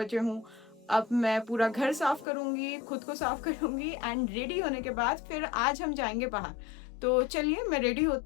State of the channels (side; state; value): right; drops out; at 2.2 s